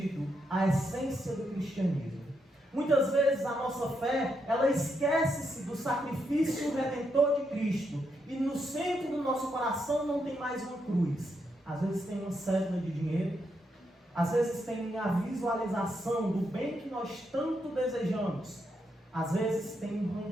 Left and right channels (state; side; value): normal; both; correlation 0.80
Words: a essência do cristianismo. Muitas vezes a nossa fé, ela esquece-se do sacrifício redentor de Cristo. E no centro do nosso coração não tem mais uma cruz. Às vezes tem uma cédula de dinheiro. Às vezes tem a visualização do bem que nós tanto desejamos. Às vezes tem um